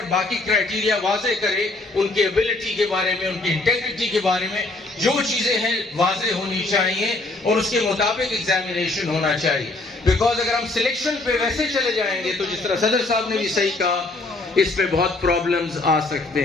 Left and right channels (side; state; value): right; quieter; 3.0 dB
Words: باقی کرائٹیریا واضح کریں. ان کی ایبلٹی کے بارے میں، ان کی انٹیگریٹی کے بارے میں جو چیزیں ہیں واضح ہونی چاہیے اور اس کے مطابق ایگزامینیشن ہونا چاہیے. بیکاز اگر ہم سلیکشن پہ ویسے چلے جائیں گے تو جس طرح صدر صاحب نے بھی صحیح کہا، اس میں بہت پرابلمز آ